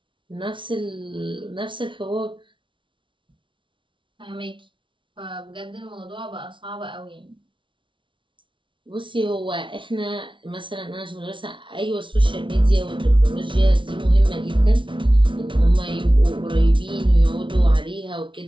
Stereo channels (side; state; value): left; late; 0.24 ms